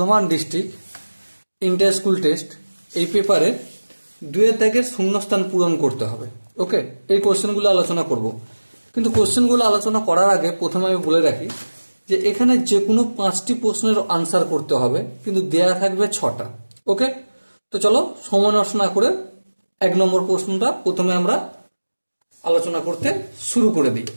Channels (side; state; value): both; inverted; correlation -1.00